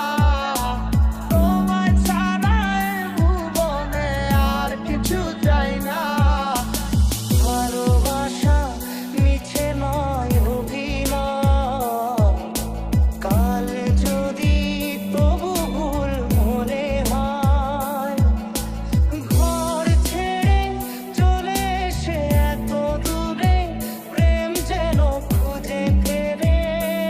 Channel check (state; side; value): identical; both; correlation 1.00